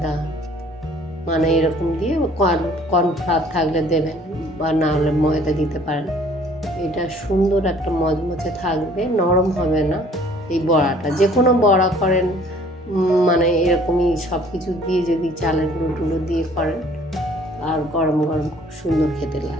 এরকম দিয়ে কর্নফ্লাওয়ার থাকলে দেবেন, বা না হলে ময়দা দিতে পারেন। এটা সুন্দর একটা মচমচে থাকবে, নরম হবে না। এই বড়াটা যে কোনো বড়া করেন, এরকমই সব কিছু দিয়ে যদি চালের গুঁড়ো দিয়ে করেন, আর গরম গরম খুব সুন্দর খেতে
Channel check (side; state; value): both; normal; correlation 0.56